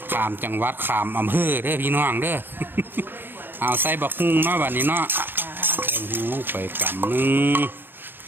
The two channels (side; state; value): left; late; 0.098 ms